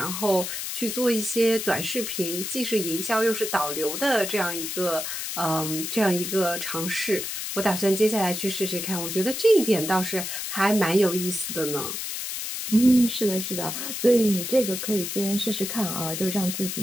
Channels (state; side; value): noise; left; hiss, 5 dB below the sound